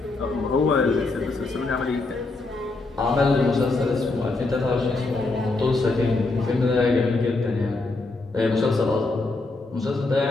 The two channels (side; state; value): right; quieter; 3.3 dB